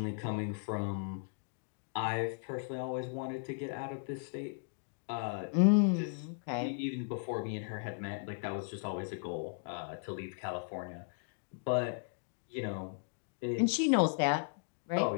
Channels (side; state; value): right; silent; digital silence